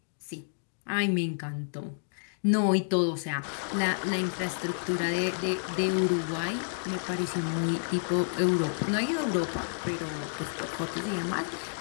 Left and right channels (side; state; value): right; silent; digital silence